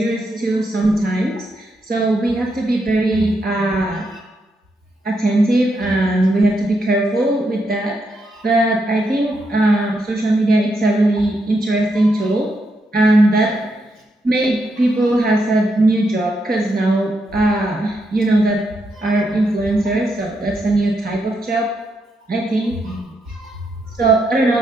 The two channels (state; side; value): normal; both; correlation 0.81